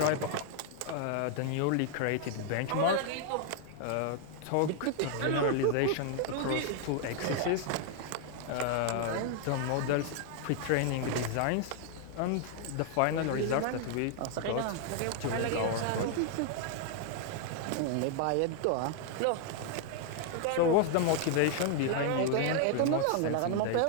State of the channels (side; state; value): both; different; correlation 0.00